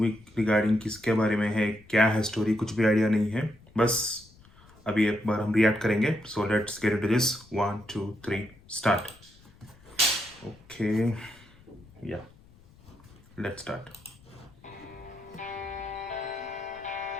regarding किसके बारे में है, क्या है स्टोरी, कुछ भी आइडिया नहीं है. बस अभी एक बार हम रिएक्ट करेंगे. So let's get into this. 1 2 3 start. Okay, या लेट्स स्टार्ट.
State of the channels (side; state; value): left; noise; rumble, 26 dB below the sound